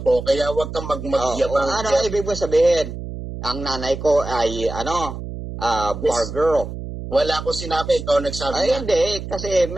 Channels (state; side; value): noise; right; hum, 8 dB below the sound